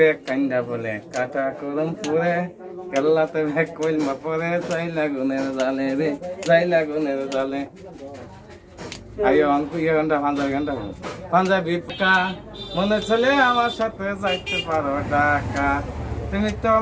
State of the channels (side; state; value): both; identical; correlation 1.00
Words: কান্দা বলে কাটা করম পুরে কেল্লাতে ভেক কইলমা পরে চাই লাগুনের জালে রে চাই লাগুনের জালে আইও অঙ্কু ইয়ে ঘন্টা পাঞ্জাবি পোকা মনে চলে আমার সাথে যাইতে পারো ঢাকা তুমি তো